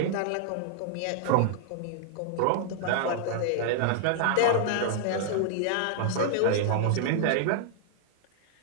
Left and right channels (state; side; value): different; both; correlation -0.01